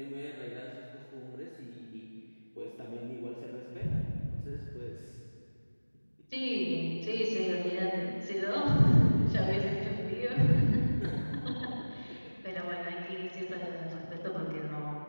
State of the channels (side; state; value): both; inverted; correlation -1.00